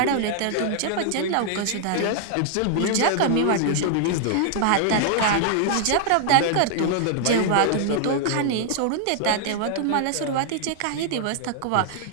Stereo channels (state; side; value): different; both; correlation -0.01